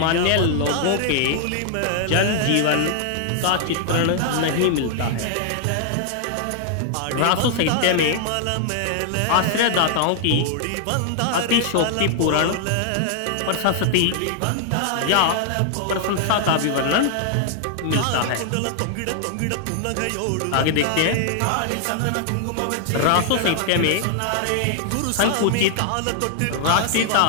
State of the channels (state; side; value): different; both; correlation 0.00